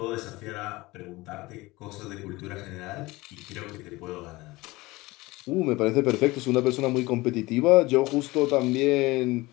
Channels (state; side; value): quieter; right; 21.0 dB